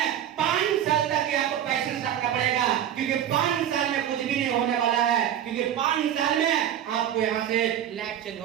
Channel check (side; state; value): left; quieter; 10.3 dB